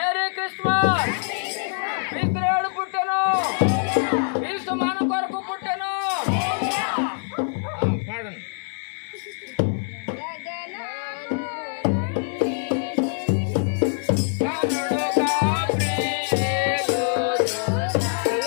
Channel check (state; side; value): silent; right; 62 dB below the other